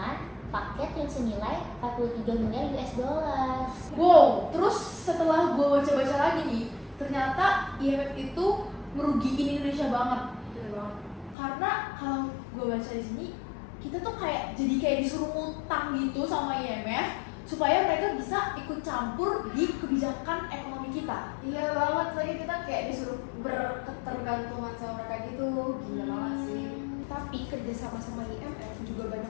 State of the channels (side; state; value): right; drops out; at 11.4 s